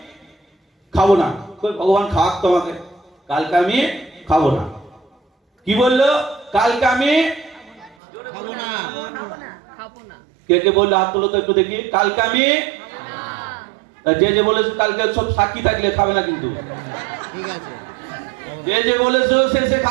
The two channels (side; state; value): left; drops out; at 8.0 s